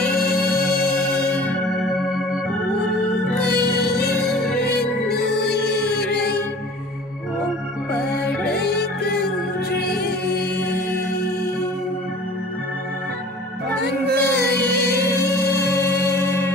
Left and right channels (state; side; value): normal; both; correlation 0.46